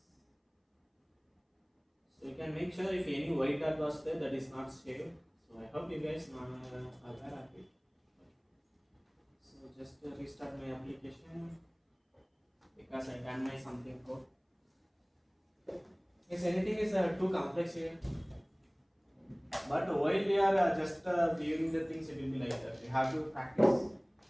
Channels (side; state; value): both; identical; correlation 1.00